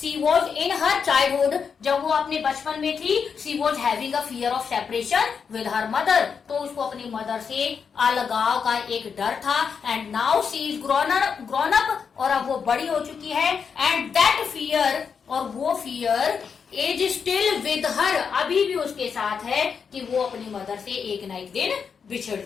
was in her childhood, जब वो अपने बचपन में थी, she was having a fear of separation with her mother, तो उसको अपनी मदर से अलगाव का एक डर था। And now she is grown up, और अब वो बड़ी हो चुकी है। एंड दैट फियर, और वो fear as still with her, अभी भी उसके साथ है कि वो अपनी मदर से एक ना एक दिन बिछड़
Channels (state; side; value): quieter; right; 6.3 dB